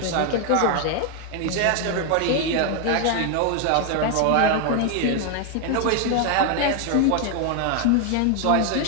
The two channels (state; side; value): different; both; correlation 0.01